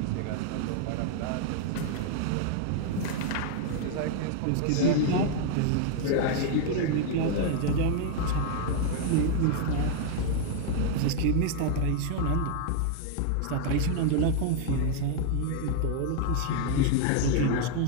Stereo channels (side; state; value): both; different; correlation 0.00